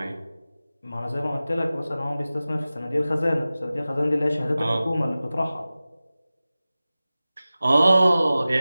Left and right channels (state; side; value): inverted; both; correlation -0.97